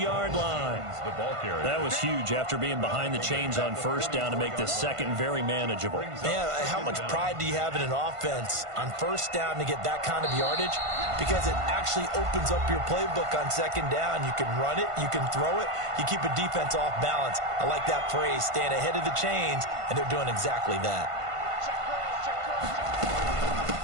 line. That was huge after being behind the chains on first down to make this second very manageable. Man, how much pride do you have in an offense on first down to get that kind of yardage? Because it actually opens up your playbook on second down. You can run it, you can throw it, you keep a defense off balance. I like that phrase, stand ahead of the chains, and they're doing exactly that.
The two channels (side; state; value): left; late; 1.5 ms